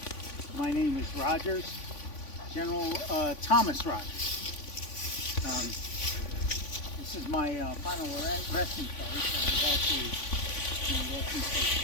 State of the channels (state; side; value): late; right; 3.5 ms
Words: My name is Rogers, General Thomas Rogers. This is my final resting place. I was actually in a resting place